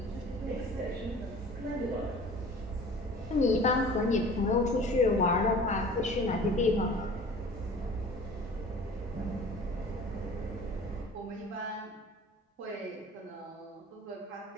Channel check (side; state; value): both; normal; correlation 0.44